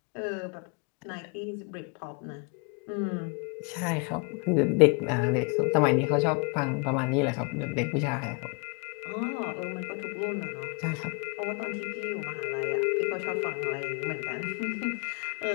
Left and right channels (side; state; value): right; quieter; 34.5 dB